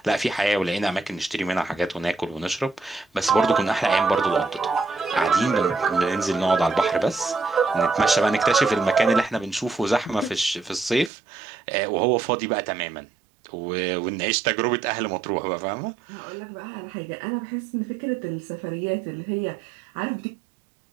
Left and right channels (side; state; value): left; drops out; at 11.1 s